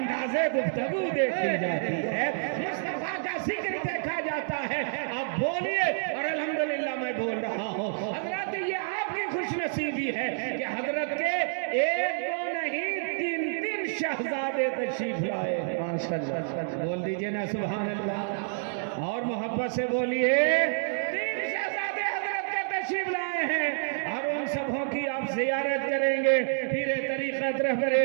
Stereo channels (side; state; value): left; silent; digital silence